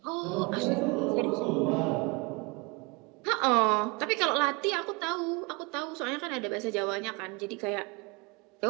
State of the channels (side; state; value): left; quieter; 28.1 dB